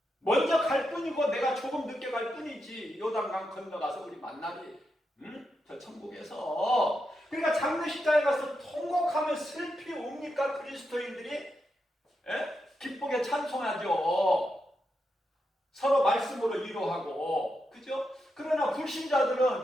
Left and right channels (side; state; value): both; normal; correlation 0.85